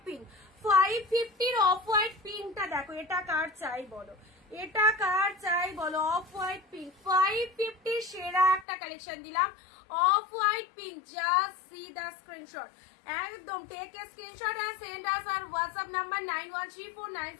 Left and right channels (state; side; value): drops out; right; at 8.7 s